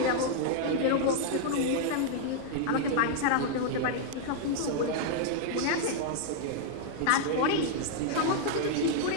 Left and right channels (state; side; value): different; both; correlation -0.01